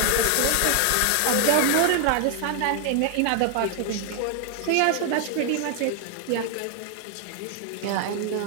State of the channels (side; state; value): both; different; correlation 0.00